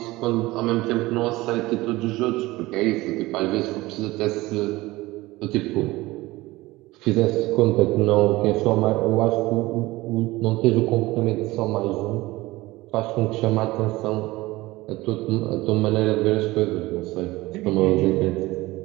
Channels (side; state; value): left; quieter; 19.5 dB